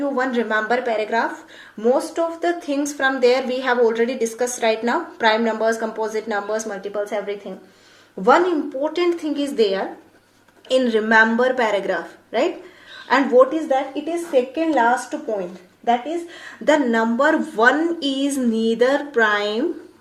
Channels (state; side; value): identical; both; correlation 1.00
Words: one remember paragraph. Most of the things from there we have already discussed right now. Prime numbers, composite numbers, multiples, everything. One important thing is there in remember paragraph, right? And what is that? It is second last point. That is, the number 1 is neither prime